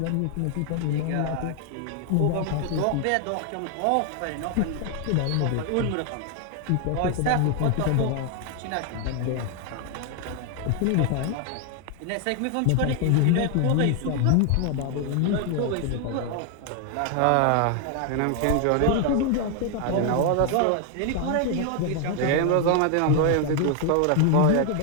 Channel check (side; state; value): both; different; correlation 0.00